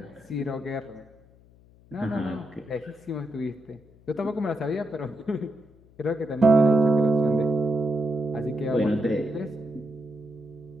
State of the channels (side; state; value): left; noise; hum, 27 dB below the sound